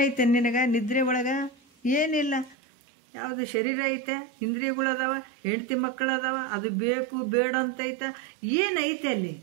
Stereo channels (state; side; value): drops out; left; at 2.6 s